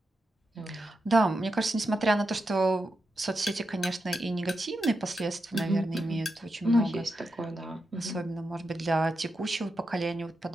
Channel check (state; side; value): normal; both; correlation 0.87